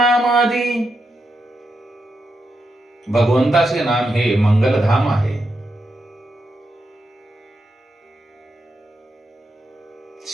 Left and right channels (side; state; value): both; normal; correlation 0.85